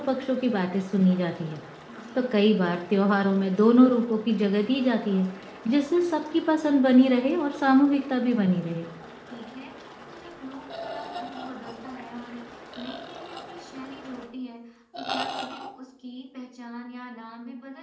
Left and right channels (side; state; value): both; identical; correlation 1.00